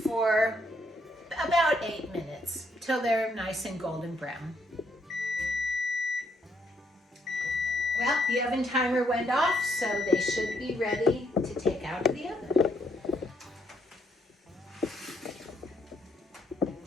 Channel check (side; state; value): both; normal; correlation 0.73